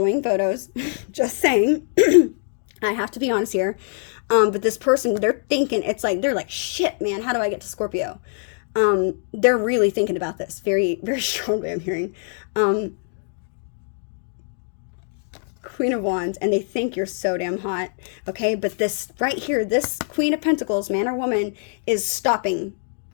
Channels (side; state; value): right; silent; digital silence